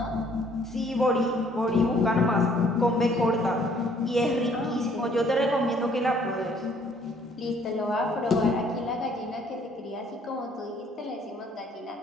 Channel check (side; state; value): both; normal; correlation 0.62